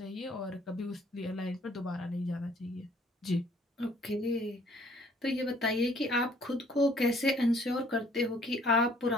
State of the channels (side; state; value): both; normal; correlation 0.59